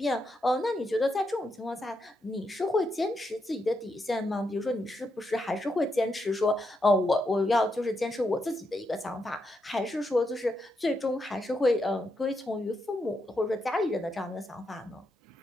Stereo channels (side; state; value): both; normal; correlation 0.82